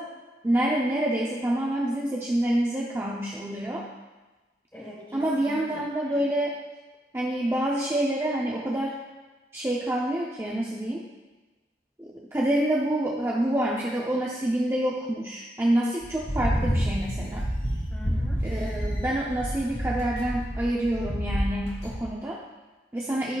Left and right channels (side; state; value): both; normal; correlation 0.82